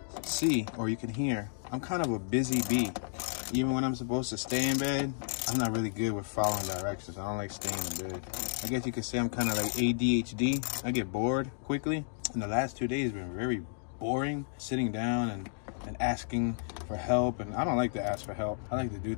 see, or you can hear, I'm kind of a busy bee. Even when I'm supposed to stay in bed, I'm not really good with following directions. I don't like staying in bed. I guess you could say I'm kind of like ADHD. I get bored quickly. And the last 2 days have been very boring, sitting down and asking for help. And I don't like to ask for help. I like to do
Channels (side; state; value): right; silent; digital silence